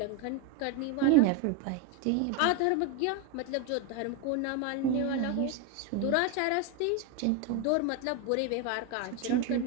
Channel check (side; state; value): both; different; correlation 0.02